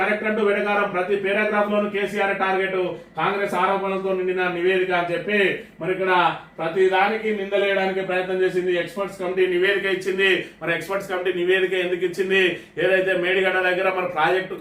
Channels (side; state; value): both; identical; correlation 1.00